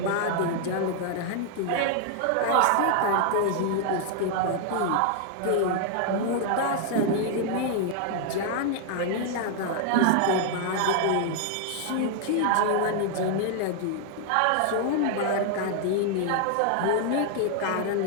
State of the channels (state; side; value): different; both; correlation 0.00